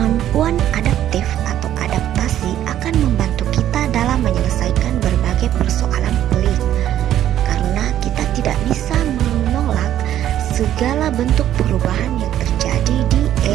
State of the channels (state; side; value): quieter; left; 11.7 dB